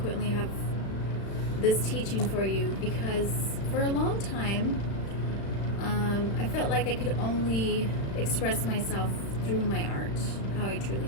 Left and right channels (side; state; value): right; late; 35 ms